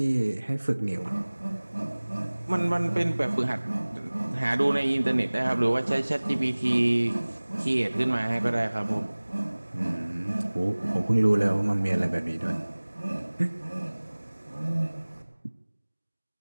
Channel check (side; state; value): both; inverted; correlation -1.00